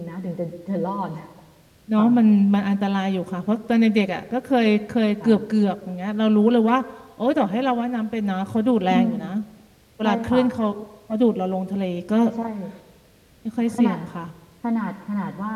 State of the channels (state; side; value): identical; both; correlation 1.00